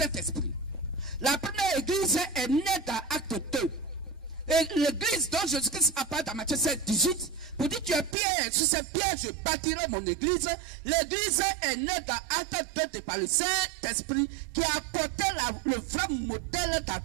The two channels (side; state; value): left; drops out; at 8.2 s